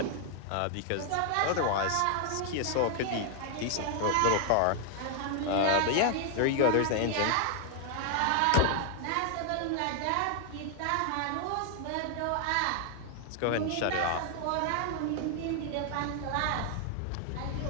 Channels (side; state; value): both; different; correlation 0.00